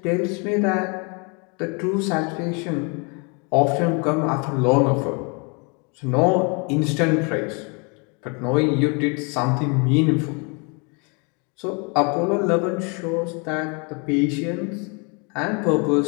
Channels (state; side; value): quieter; right; 33.2 dB